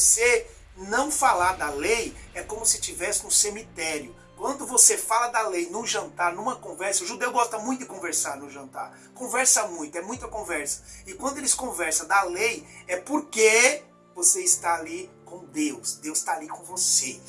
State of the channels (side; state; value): both; identical; correlation 1.00